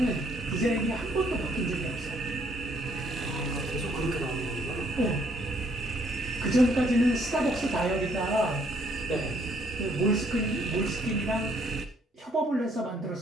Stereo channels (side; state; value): both; normal; correlation 0.67